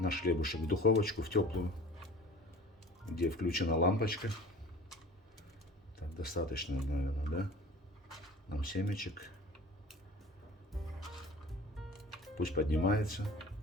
хлебушек в духовочку, в теплую, где включена лампочка. Так, достаточно, наверное, да? Нам семечек. Пусть поднимается.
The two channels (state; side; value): normal; both; correlation 0.43